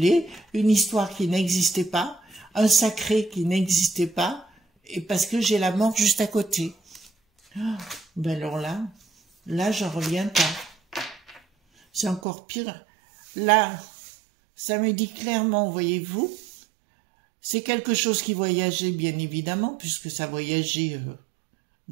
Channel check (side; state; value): left; drops out; at 12.2 s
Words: une histoire qui n'existait pas, un sacré qui n'existait pas, et parce que j'ai la mort juste à côté. Ben alors là, j'en reviens pas. C'est encore pire. Là, ça me dit clairement, voyez-vous, c'est quelque chose qui voyageait, bien évidemment, puisque ça voyageait